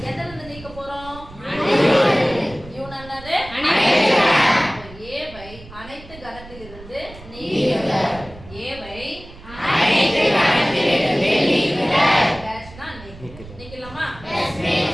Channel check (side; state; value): right; noise; rumble, 18 dB below the sound